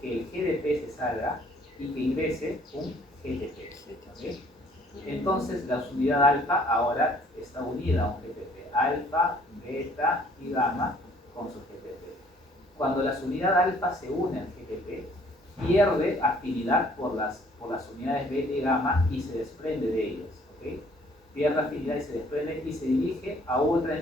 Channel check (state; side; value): normal; both; correlation 0.60